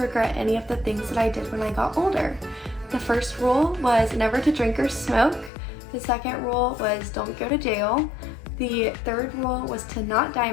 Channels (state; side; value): drops out; right; at 5.5 s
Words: regret any of the things that I did when I got older. The first rule was never to drink or smoke. The second rule was don't go to jail. The third rule was to not dye